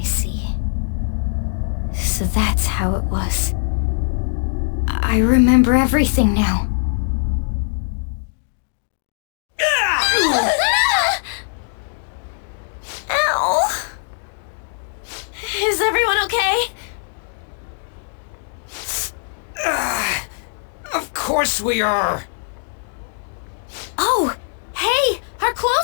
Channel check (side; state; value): right; silent; digital silence